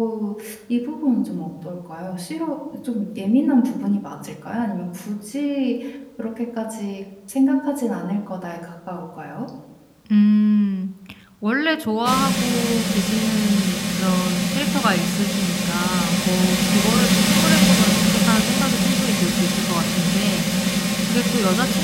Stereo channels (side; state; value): both; identical; correlation 1.00